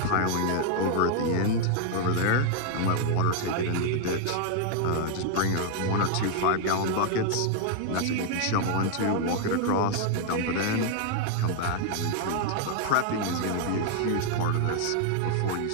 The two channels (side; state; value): both; different; correlation 0.00